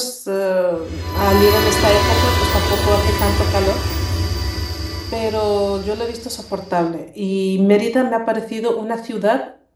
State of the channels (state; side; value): identical; both; correlation 1.00